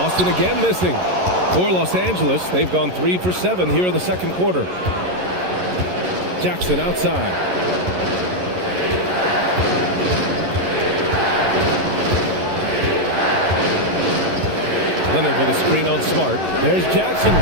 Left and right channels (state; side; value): late; left; 11 ms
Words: again missing. For Los Angeles, they've gone 3 for 7 here in the second quarter. Jackson outside. Leonard with a screen on Smart. There's Jackson